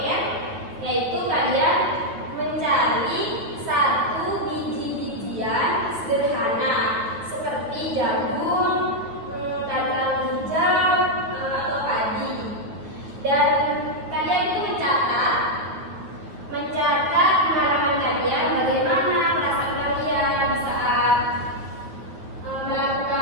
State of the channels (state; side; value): late; left; 9.5 ms